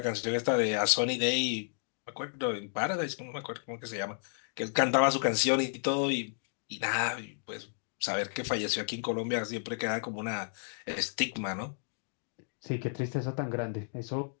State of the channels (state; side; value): silent; right; digital silence